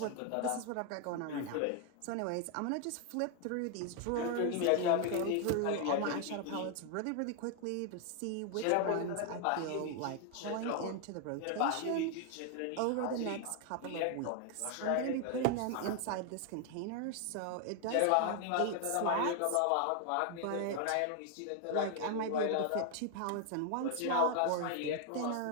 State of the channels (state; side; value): different; both; correlation 0.00